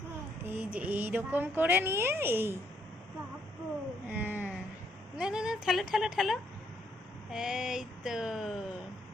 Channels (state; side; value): normal; both; correlation 0.71